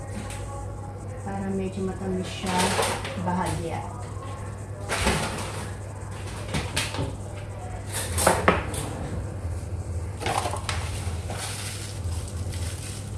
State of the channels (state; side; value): identical; both; correlation 1.00